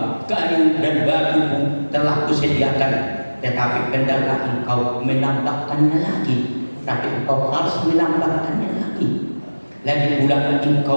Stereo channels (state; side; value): inverted; both; correlation -1.00